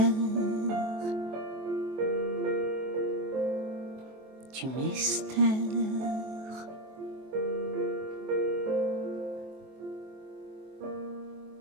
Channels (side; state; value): left; late; 23 ms